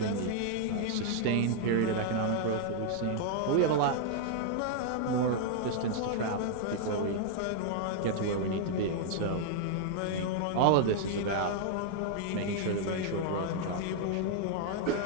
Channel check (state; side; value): different; both; correlation 0.00